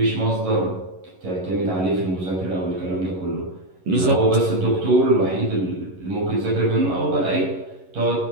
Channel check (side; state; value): left; late; 11 ms